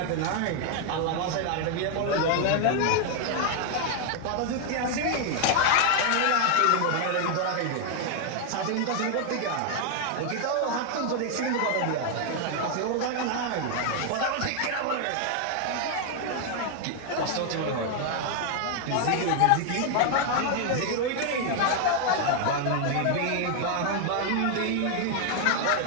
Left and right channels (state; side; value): different; both; correlation 0.00